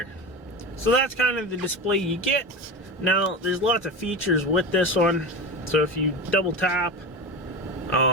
So that's kind of the display you get. Now there's lots of features with this one. So if you double tap,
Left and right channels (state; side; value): normal; both; correlation 0.24